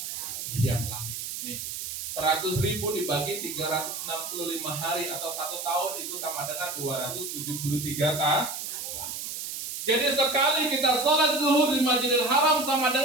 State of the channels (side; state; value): right; noise; hiss, 6 dB below the sound